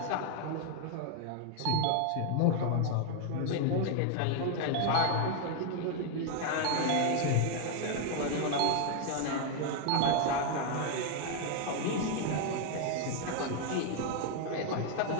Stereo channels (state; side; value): different; both; correlation 0.00